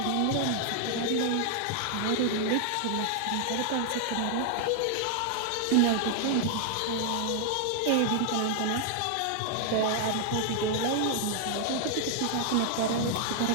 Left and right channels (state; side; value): different; both; correlation 0.00